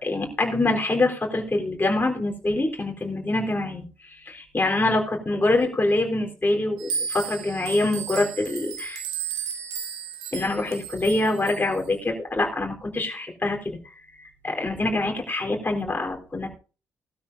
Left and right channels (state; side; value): normal; both; correlation 0.78